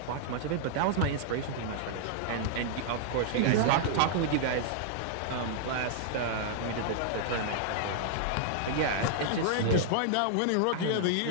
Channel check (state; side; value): different; both; correlation -0.01